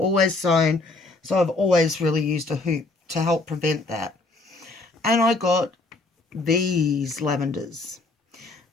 sewn, so I've always really used a hoop to help prevent that. And I got these lavenders.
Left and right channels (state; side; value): quieter; right; 3.2 dB